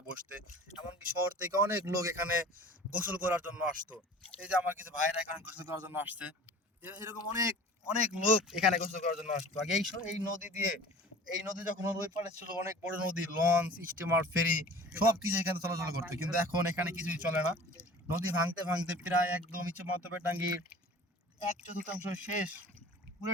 বসতে। এমনকি শহর থেকে অনেক লোক এখানে গোসল করার জন্য আসতো। এই যে আমার কিছু ভাইরা এখানে গোসল করার জন্য আসছে, এরকম অনেক অনেক লোক এখানে গোসল করার জন্য আসতো আগে। এই নদী দিয়ে, এই নদী যখন ওই পাড়ে ছিল অনেক বড় নদী, লঞ্চ, স্টিমার, ফেরি সব কিছু এখানে চলাচল করতো, কিন্তু এখন এখানে কিছুই চলে না। নদী ভাঙতে ভাঙতে প্রায় একদম ইচ্ছে মাতবে টাঙ্গির 1/4 শেষ,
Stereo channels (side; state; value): both; normal; correlation 0.42